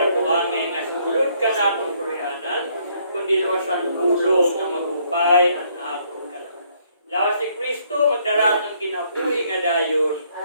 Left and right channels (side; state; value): both; inverted; correlation -0.68